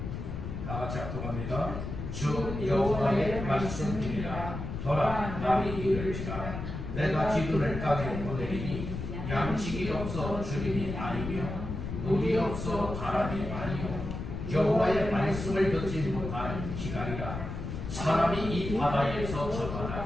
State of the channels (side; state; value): left; noise; rumble, 6 dB below the sound